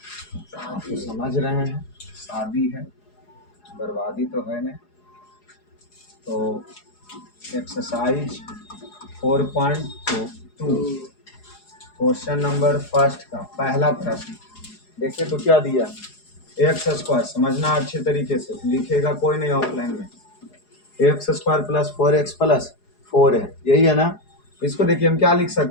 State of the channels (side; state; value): right; late; 4.8 ms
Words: आप तो समझ रहे हैं, शादी है, बर्बादी तो है नहीं। तो एक्सरसाइज 4.2 क्वेश्चन नंबर फर्स्ट का पहला प्रश्न देखिए तो क्या दिया, एक्स स्क्वायर, समझना अच्छे तरीके से, लिखेगा कोई नहीं ऑफलाइन में। X square plus 4x plus 4 है, यही है ना। इसको देखिए हम क्या लिख